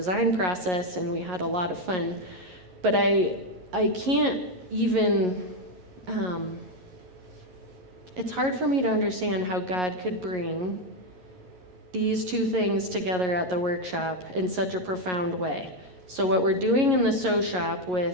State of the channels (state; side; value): late; left; 11 ms